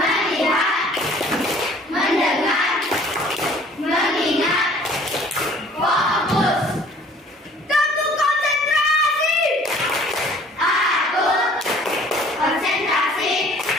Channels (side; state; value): both; normal; correlation 0.53